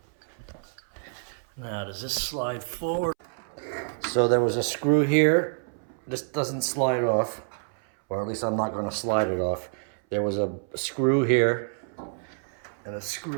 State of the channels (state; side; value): silent; left; 60 dB below the other